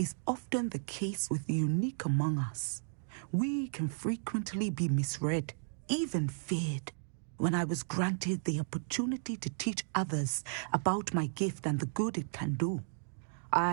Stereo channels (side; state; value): left; silent; digital silence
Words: often the case with the unique among us, we can frequently be misread, even feared. When I was granted the opportunity to teach others about my gift and the good it can do,